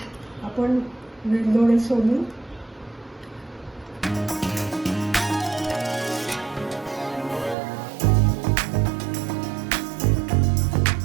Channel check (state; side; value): drops out; left; at 7.6 s